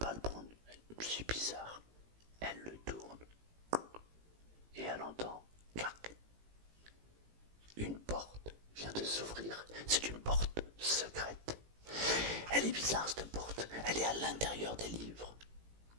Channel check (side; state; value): left; late; 18 ms